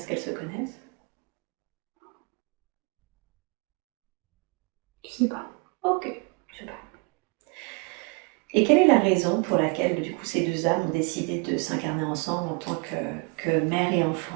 qu'elles se connaissent? Je sais pas. Ok. Super. Et quelle est la raison pour laquelle, du coup, ces deux âmes ont décidé de s'incarner ensemble en tant que mère et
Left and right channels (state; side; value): quieter; left; 31.2 dB